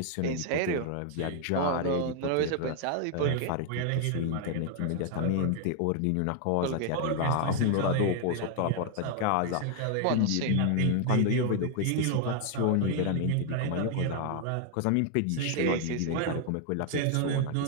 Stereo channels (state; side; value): different; both; correlation 0.00